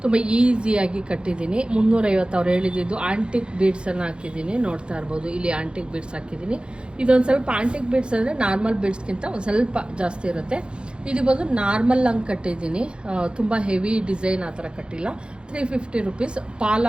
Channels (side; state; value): left; late; 0.054 ms